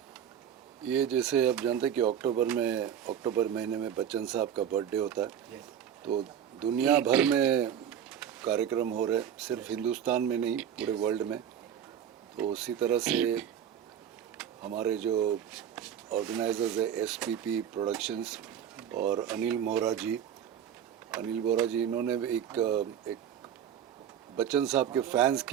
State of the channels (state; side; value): quieter; left; 9.2 dB